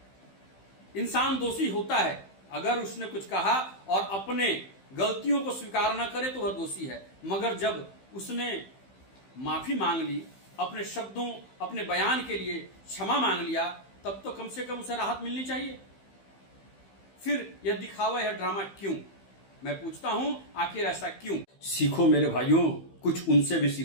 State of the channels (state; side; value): late; right; 15 ms